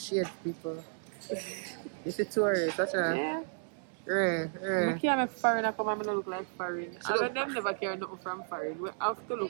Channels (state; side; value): silent; left; 56 dB below the other